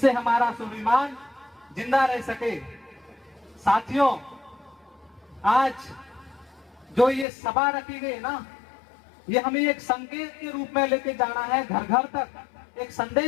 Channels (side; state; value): right; drops out; at 7.2 s